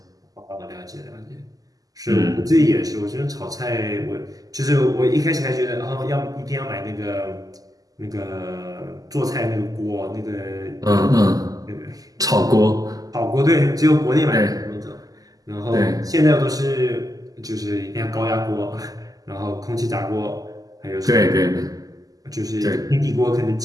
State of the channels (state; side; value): late; left; 0.17 ms